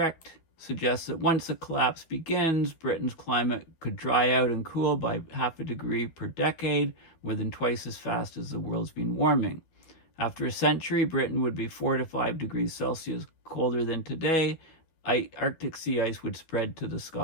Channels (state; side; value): late; right; 12 ms